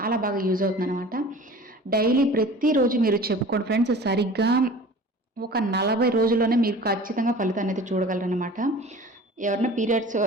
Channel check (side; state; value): both; normal; correlation 0.42